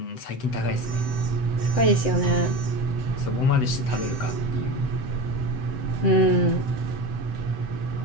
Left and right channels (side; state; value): right; late; 7.9 ms